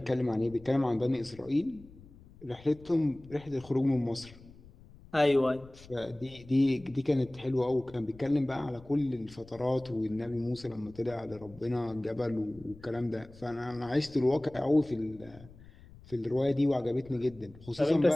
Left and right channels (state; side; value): noise; left; rumble, 21 dB below the sound